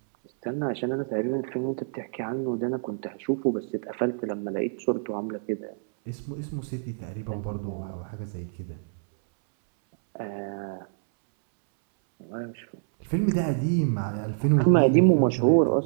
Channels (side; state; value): left; silent; 60 dB below the other